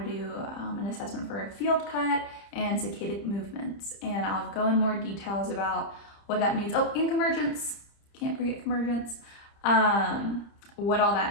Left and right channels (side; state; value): right; late; 30 ms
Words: do an assessment for a field cut and saccadic movements. And I'll go in more details about what that means. Oh, and convergence. Can't forget convergence. What all